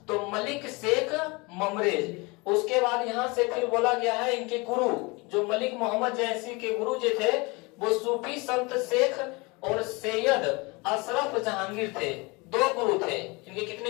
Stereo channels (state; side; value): quieter; right; 26.5 dB